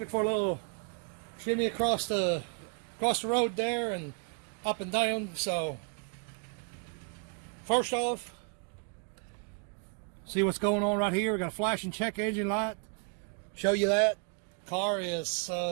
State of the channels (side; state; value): left; quieter; 38.0 dB